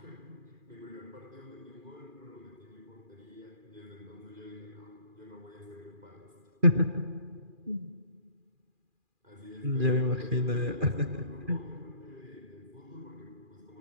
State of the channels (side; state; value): left; late; 2.4 ms